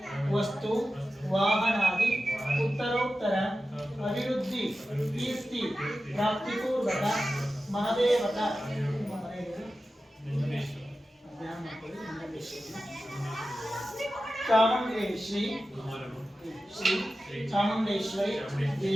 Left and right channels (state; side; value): normal; both; correlation 0.93